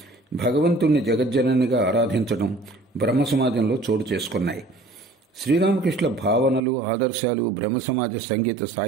భగవంతుణ్ణి జగజ్జననిగా ఆరాధించడం బ్రహ్మ సమాజంలో చోటు చేసుకున్నాయి. శ్రీరామకృష్ణుల భావనలు, ఆదర్శాలు బ్రహ్మ సమాజ సంగీత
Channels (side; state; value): left; drops out; at 6.6 s